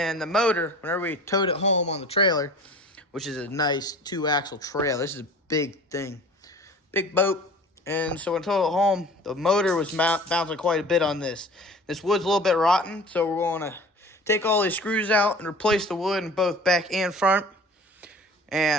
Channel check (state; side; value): normal; both; correlation 0.43